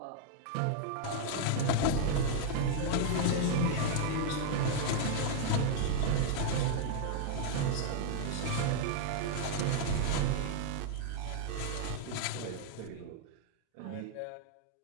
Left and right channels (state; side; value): different; both; correlation -0.01